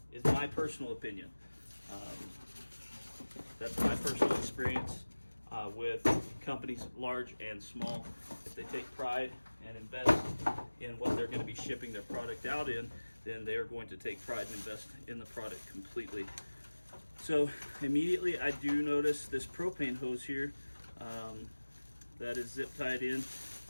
Is my personal opinion. That's my personal experience with companies large and small. If they take pride and invest in what they're going to be shipping their product out in, then they are going to take pride and invest in the product completely. So immediately I do notice this propane hose here that is zip tied in.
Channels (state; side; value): inverted; both; correlation -1.00